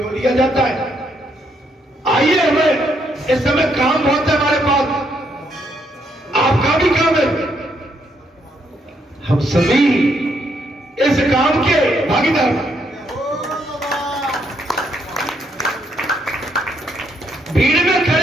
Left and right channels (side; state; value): both; normal; correlation 0.74